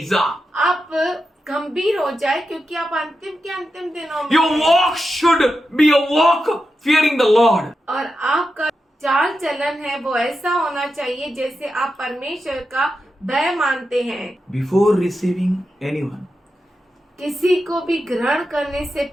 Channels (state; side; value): normal; both; correlation 0.89